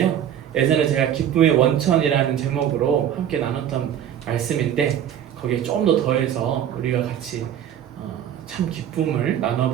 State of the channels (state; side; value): quieter; left; 10.0 dB